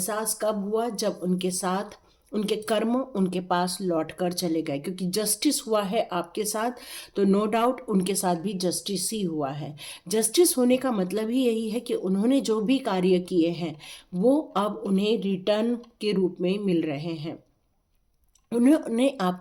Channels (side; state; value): both; identical; correlation 1.00